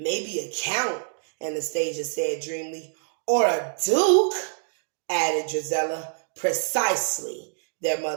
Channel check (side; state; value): left; silent; digital silence